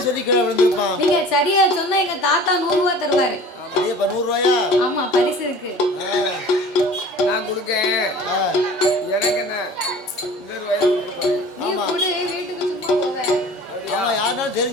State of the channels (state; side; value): normal; both; correlation 0.43